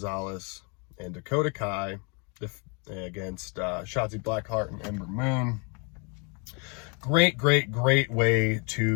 and Dakota Kai against Shotzi Blackheart and Ember Moon. Great way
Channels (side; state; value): right; quieter; 34.1 dB